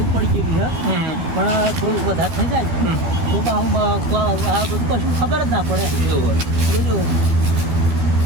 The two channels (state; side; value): late; left; 12 ms